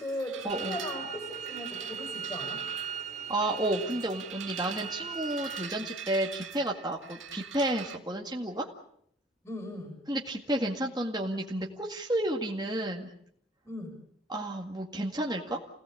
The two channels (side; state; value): both; normal; correlation 0.50